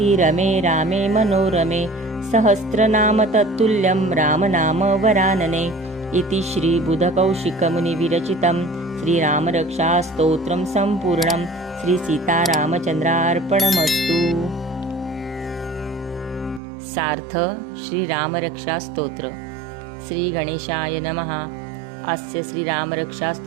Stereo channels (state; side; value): drops out; left; at 16.6 s